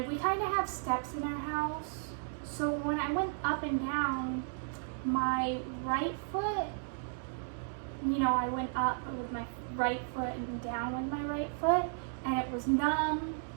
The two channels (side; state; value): left; silent; digital silence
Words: we kind of have steps in our house. So when I went up and down, my right foot, I went up with my right foot and down with my right foot, and it was numb.